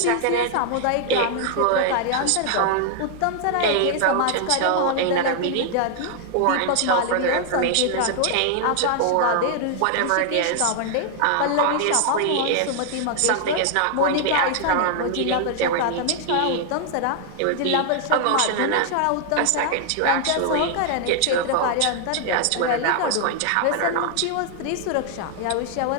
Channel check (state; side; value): different; both; correlation 0.00